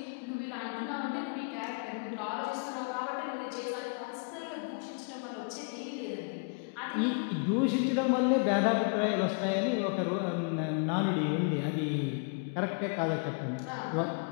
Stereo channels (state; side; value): quieter; right; 37.9 dB